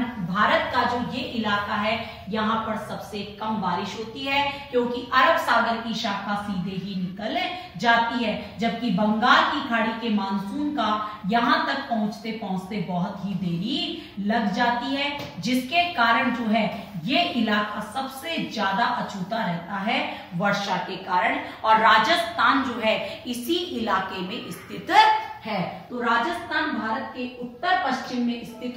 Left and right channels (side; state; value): both; identical; correlation 1.00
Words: भारत का जो ये इलाका है यहाँ पर सबसे कम बारिश होती है, क्योंकि अरब सागर की शाखा सीधे ही निकल जाती है, जबकि बंगाल की खाड़ी के मानसून का यहाँ तक पहुंचते पहुंचते बहुत ही देरी लग जाती है, जिसके कारण जो है ये इलाका सबसे ज्यादा अछूता रहता है वर्षा के कारण, और राजस्थान जो है इसी इलाके में स्थित है। तो राजस्थान भारत के उत्तर पश्चिम में